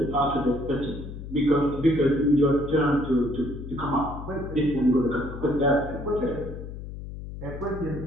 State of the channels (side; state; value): left; noise; hum, 10 dB below the sound